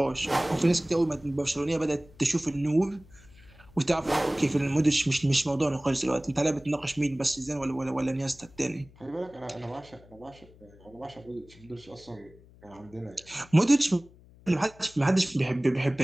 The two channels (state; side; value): noise; left; hum, 24 dB below the sound